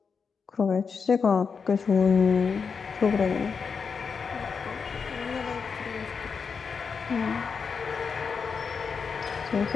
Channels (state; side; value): quieter; right; 5.7 dB